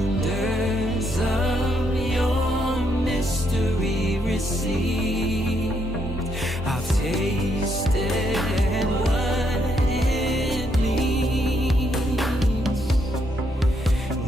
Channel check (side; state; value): both; normal; correlation 0.75